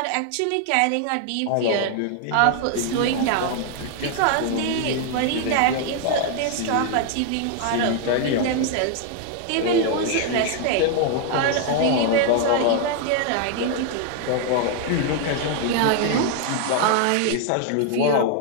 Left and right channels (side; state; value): both; different; correlation 0.00